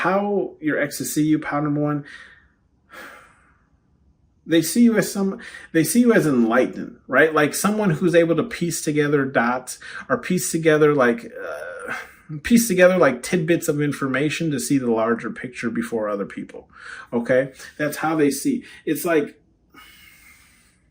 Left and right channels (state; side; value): identical; both; correlation 1.00